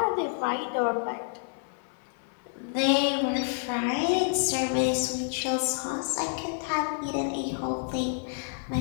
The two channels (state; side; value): silent; right; 58 dB below the other